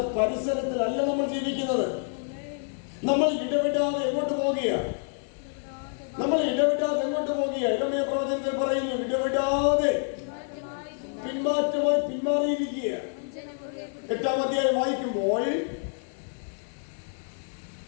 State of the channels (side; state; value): right; silent; 60 dB below the other